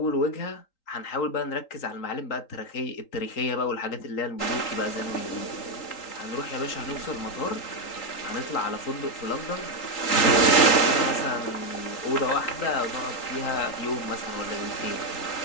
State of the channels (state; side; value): late; right; 3.8 ms